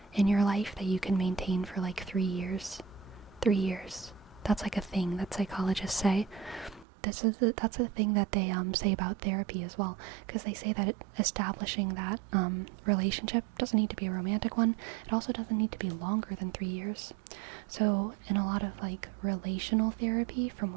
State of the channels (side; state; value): left; drops out; at 6.9 s